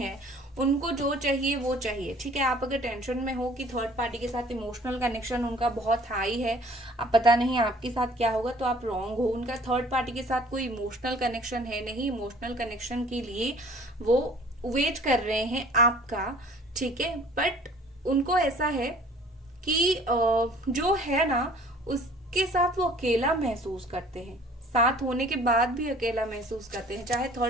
उनको जो चाहिए वो चाहिए। ठीक है, आप अगर टेंशन में हो कि थर्ड पार्टी के साथ इमोशनल कनेक्शन उनका बहुत हाई है, आप पता नहीं आपके साथ क्या होगा, तो आप रॉन्ग हो। उनका थर्ड पार्टी के साथ कोई इमोशनल कनेक्शन है नहीं, इमोशनल कनेक्शन के लिए वो वेट कर रहे हैं आपका। ठीक है, बट उनको ऐसा है कि जो है ना उसके साथ वो अकेला महसूस करते हैं, साथ होने के बाद भी अकेला महसूस करते हैं, चाहे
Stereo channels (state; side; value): normal; both; correlation 0.52